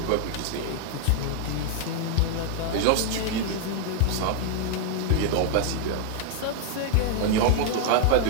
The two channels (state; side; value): different; both; correlation 0.00